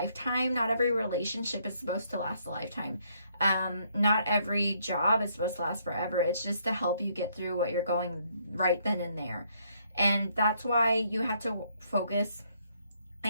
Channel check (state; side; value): inverted; both; correlation -0.70